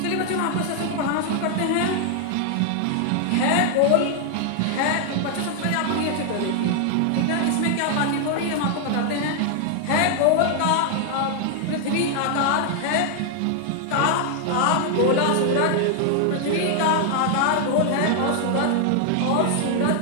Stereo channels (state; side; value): different; both; correlation 0.00